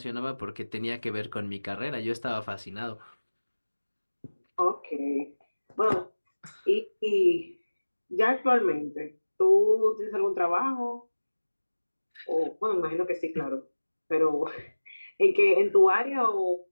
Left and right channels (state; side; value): inverted; both; correlation -1.00